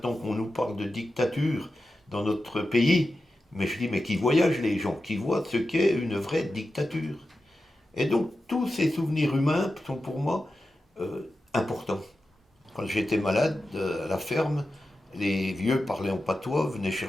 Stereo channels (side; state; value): both; normal; correlation 0.92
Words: qu'on nous parle de dictature dans notre pays, mais je dis mais qui voyagent les gens, qui voient ce qu'est une vraie dictature. Et donc tous ces souvenirs humains sont pour moi importants. Quand j'étais malade à la ferme, les vieux parlaient en patois, venaient